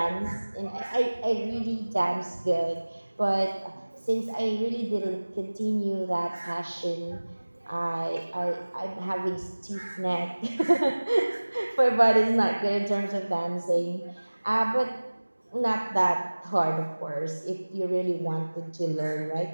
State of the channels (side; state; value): both; inverted; correlation -1.00